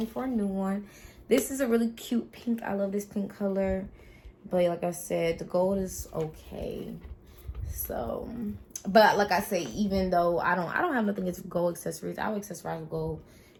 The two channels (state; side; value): identical; both; correlation 1.00